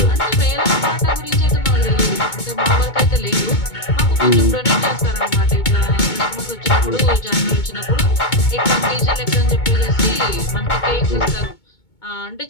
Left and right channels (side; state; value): right; late; 2.2 ms